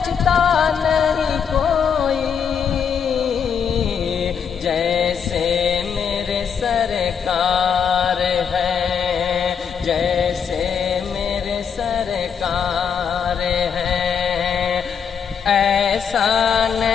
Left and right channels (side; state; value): right; quieter; 7.1 dB